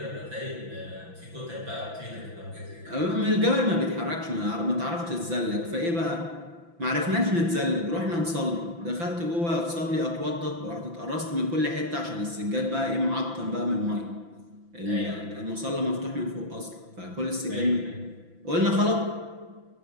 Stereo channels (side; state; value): left; late; 5.9 ms